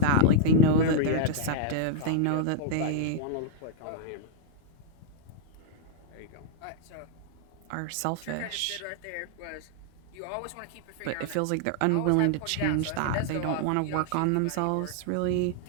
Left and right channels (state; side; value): different; both; correlation -0.01